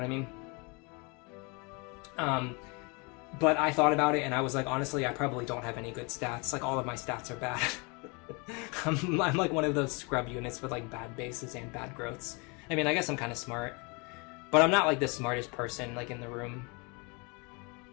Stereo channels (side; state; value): right; quieter; 30.6 dB